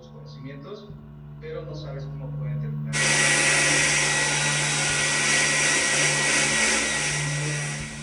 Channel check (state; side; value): identical; both; correlation 1.00